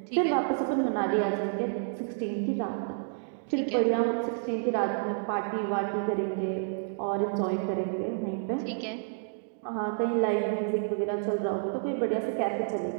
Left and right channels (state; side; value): silent; left; digital silence